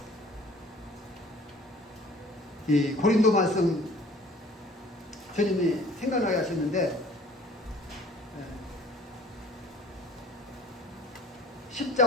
이 고린도 말씀 주님이 생각나게 하셨는데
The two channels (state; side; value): normal; both; correlation 0.51